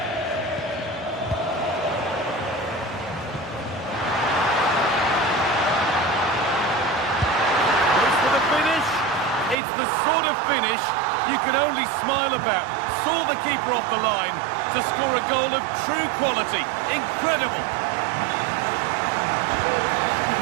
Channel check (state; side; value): drops out; left; at 9.6 s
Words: It's the sort of finish you can only smile about. Saw the keeper off the line to score a goal of true quality. Incredible.